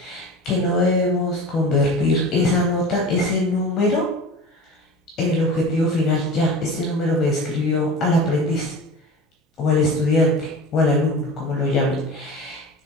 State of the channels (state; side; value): normal; both; correlation 0.34